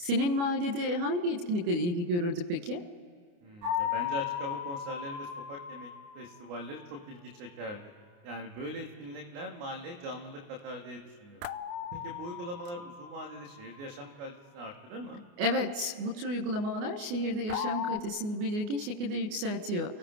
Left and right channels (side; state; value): left; late; 29 ms